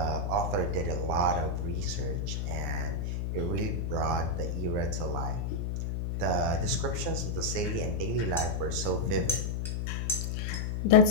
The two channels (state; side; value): noise; left; hum, 1 dB below the sound